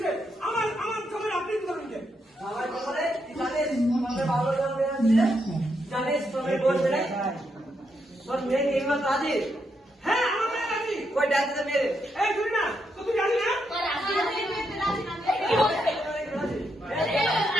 আমার খবর আপনি ধরুন কে আমার খবরে জানিস আমাদের ভালো যাবে জানিস তোর বলবে না তোর মেয়ে এই মাত্র আজি হ্যাঁ আমার মেয়ে নাকি ওই ডাক্তার মেরে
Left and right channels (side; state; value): both; normal; correlation 0.80